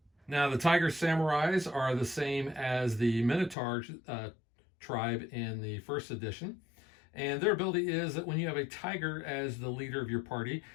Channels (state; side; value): drops out; right; at 3.6 s